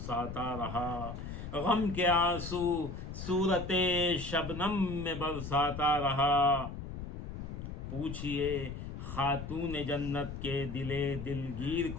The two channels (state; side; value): noise; left; rumble, 8 dB below the sound